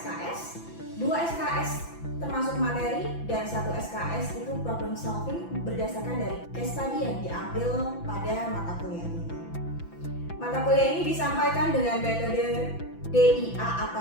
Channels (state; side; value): late; right; 5.9 ms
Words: 2 SKS termasuk materi, dan 1 SKS itu problem solving berdasarkan dari case study yang diambil pada mata kuliah ini. Mata kuliah ini disampaikan dengan metode DIA